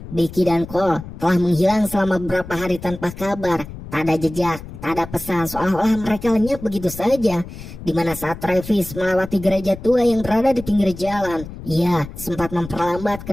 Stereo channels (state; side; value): noise; left; rumble, 13 dB below the sound